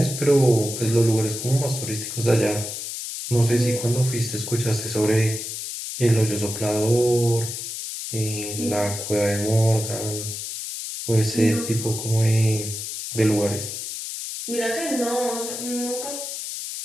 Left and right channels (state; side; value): noise; left; hiss, 6 dB below the sound